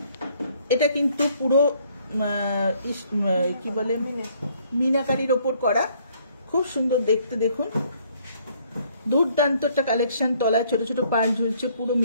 এটা কিন্তু পুরো কি বলে, মিনাকারির ওপর করা, খুব সুন্দর দেখতে। দেখুন দুর্দান্ত একটা কালেকশন। তলায় ছোট ছোট পার্ল ঝুলছে, পুরো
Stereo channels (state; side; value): inverted; both; correlation -0.64